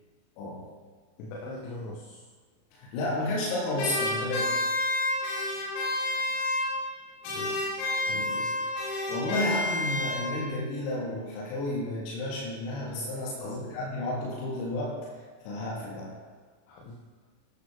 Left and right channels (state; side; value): late; right; 36 ms